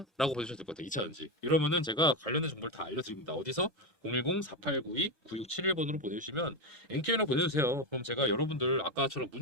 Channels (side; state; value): both; normal; correlation 0.11